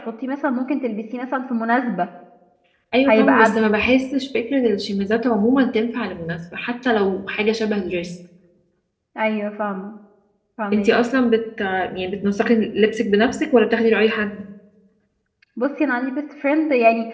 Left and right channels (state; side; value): identical; both; correlation 1.00